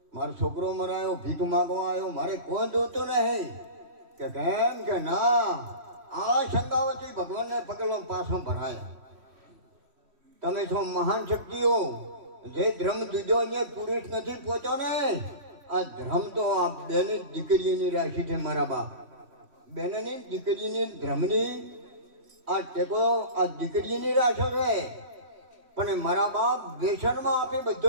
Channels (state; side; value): late; left; 3.1 ms